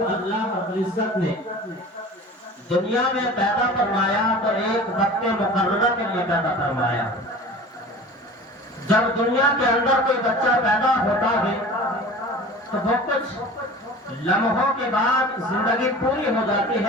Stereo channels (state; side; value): normal; both; correlation 0.39